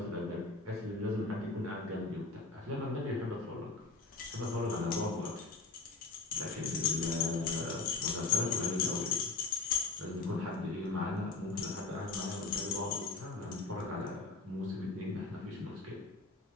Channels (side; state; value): right; quieter; 3.8 dB